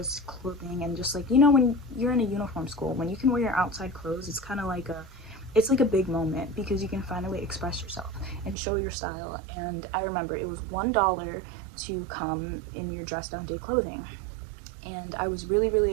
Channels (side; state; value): left; drops out; at 8.6 s